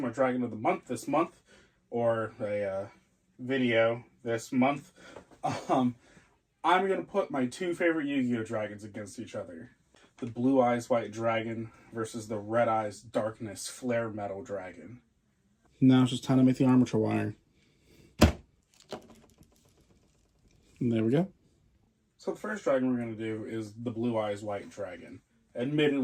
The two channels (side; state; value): both; identical; correlation 1.00